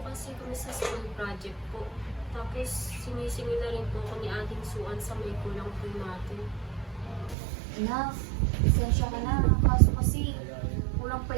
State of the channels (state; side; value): drops out; left; at 7.4 s